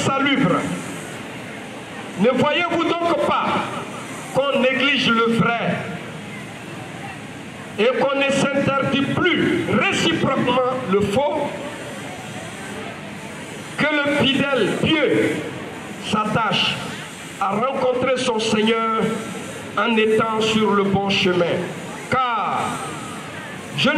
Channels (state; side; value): identical; both; correlation 1.00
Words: Ne voyez-vous donc pas qu'on néglige le vrai et qu'on ne s'interdit plus réciproquement le faux, que le fidèle pieux s'attache à rencontrer son Seigneur en étant sur le bon chemin. Car je